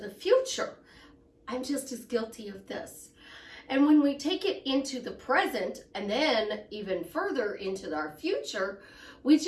future. I'm just as guilty of this. And when we take it into the present and then even further into our future, we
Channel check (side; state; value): both; identical; correlation 1.00